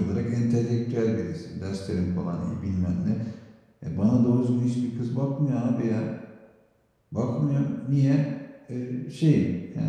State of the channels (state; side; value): identical; both; correlation 1.00